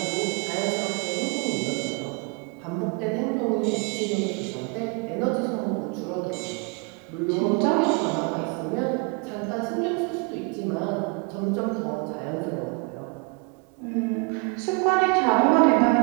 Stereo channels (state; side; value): quieter; left; 32.8 dB